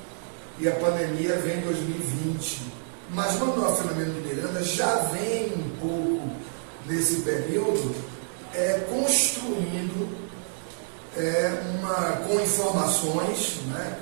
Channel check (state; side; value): silent; left; digital silence